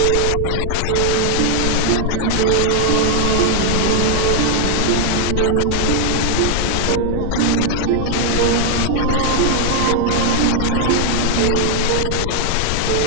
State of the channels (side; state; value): both; different; correlation 0.00